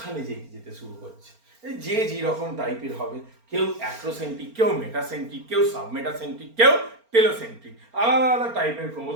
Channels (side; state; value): left; late; 4.4 ms